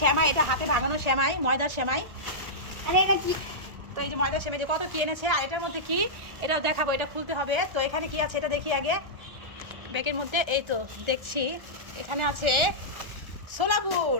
সেমাই, এটা হাতে ভাঙানো সেমাই, ময়দার সেমাই। তো এই যে ময়দার সেমাই, যে কত কি এনেছে। আর এটার মধ্যে কি, এটা দেখাবো, এটা খুলতে হবে। তো এখানে কি আছে এটা দেখি আগে ব্যাগের মধ্যে। এই তো দেখছি এখানে আছে ছোলা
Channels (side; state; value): left; late; 1.4 ms